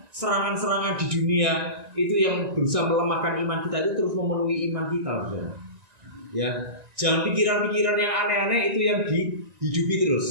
serangan-serangan di dunia itu yang berusaha melemahkan iman kita itu terus memenuhi iman kita, saudara. Ya, jangan pikiran-pikiran yang aneh-aneh itu yang dihidupi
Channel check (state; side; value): late; left; 1.9 ms